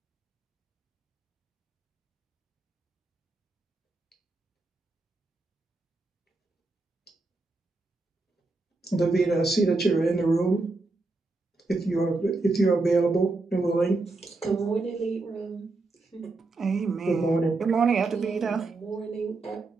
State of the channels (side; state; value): left; quieter; 3.4 dB